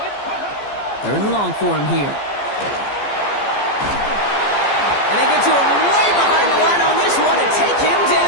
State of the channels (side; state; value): right; late; 14 ms